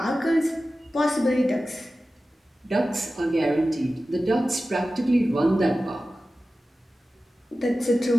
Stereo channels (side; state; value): both; normal; correlation 0.95